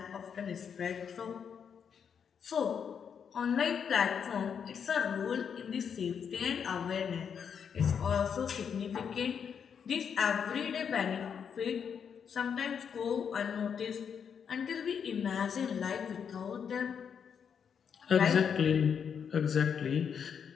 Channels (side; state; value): right; quieter; 7.2 dB